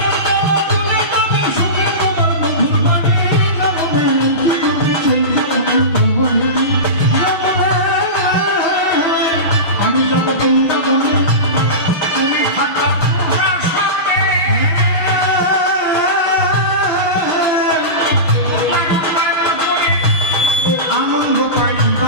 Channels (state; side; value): late; right; 6.3 ms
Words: তুলে তবে সুখে তোমার মধুর বাণী আমি যাব বৃন্দাবনে তুমি থাকা প্রাসাদে আনন্দ পাই